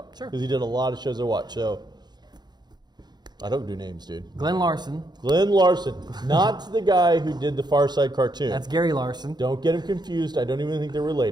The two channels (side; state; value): left; late; 0.20 ms